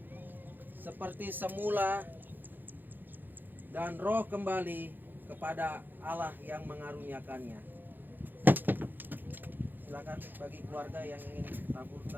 seperti semula, dan roh kembali kepada Allah yang mengaruniakannya. Silakan bagi keluarga yang ingin tabur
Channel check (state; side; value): late; left; 0.090 ms